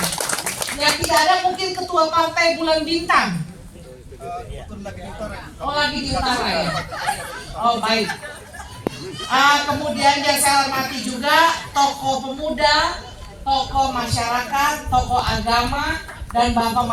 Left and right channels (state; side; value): identical; both; correlation 1.00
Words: yang tidak ada mungkin Ketua Partai Bulan Bintang. Oh, lagi di utara ya. Oh, baik. Kemudian yang saya hormati juga tokoh pemuda, tokoh masyarakat, tokoh agama, dan bapak